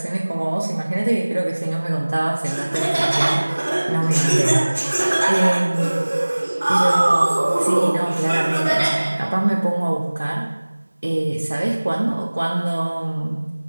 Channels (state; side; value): inverted; both; correlation -1.00